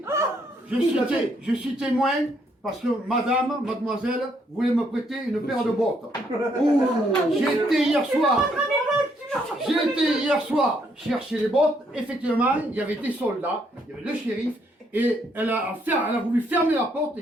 Je suis témoin parce que mademoiselle voulait me prêter une paire de bottes. J'ai été hier soir chercher les bottes. Effectivement, il y avait des soldats, il y avait le shérif, et elle a voulu fermer la porte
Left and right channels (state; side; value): normal; both; correlation 0.72